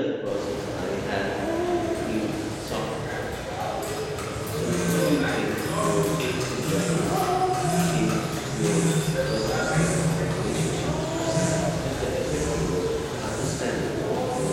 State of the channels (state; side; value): identical; both; correlation 1.00